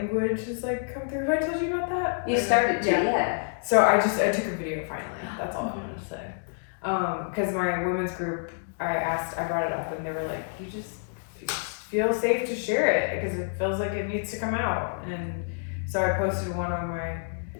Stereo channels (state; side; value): silent; right; digital silence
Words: has like come through. Have I told you about that? You started to, yeah. So I took a video finally. That's all I wanted to say. Because my women's group, I brought it up, and they were like, you just feel safe to share it because it feels like it needs to come out. And so I posted one on